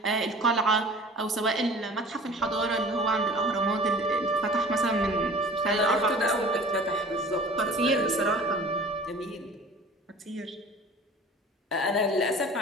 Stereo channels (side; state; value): both; normal; correlation 0.43